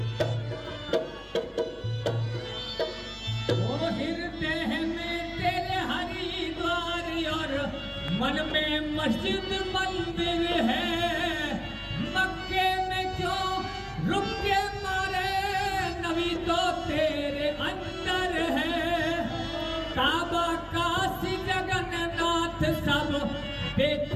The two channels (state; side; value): identical; both; correlation 1.00